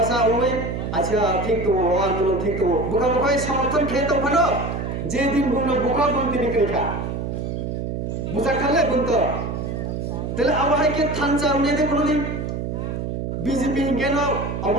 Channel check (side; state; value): right; noise; hum, 4 dB below the sound